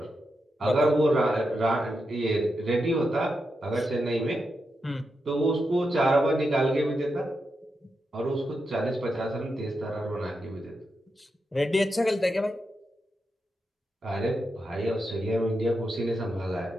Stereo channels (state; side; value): normal; both; correlation 0.86